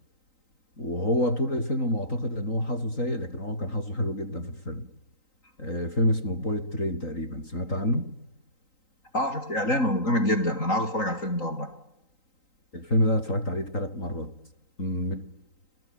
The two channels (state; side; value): late; right; 3.9 ms